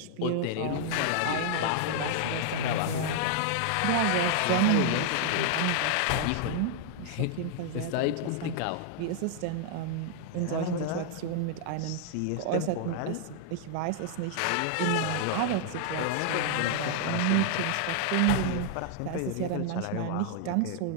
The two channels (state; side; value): different; both; correlation 0.00